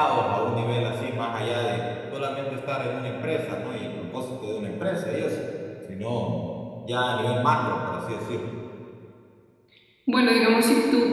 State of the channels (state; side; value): identical; both; correlation 1.00